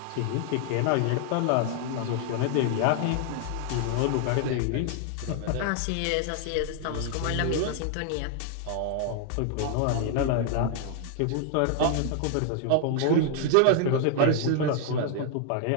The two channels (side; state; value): both; different; correlation 0.00